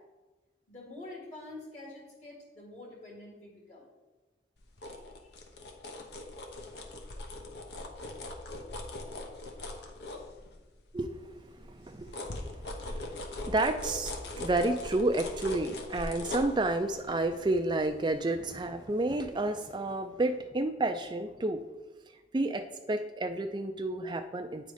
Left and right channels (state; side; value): normal; both; correlation 0.50